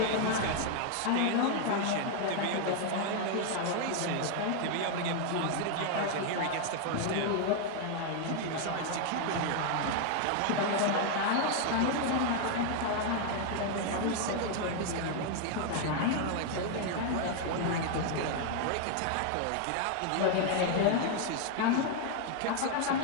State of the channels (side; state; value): both; different; correlation 0.00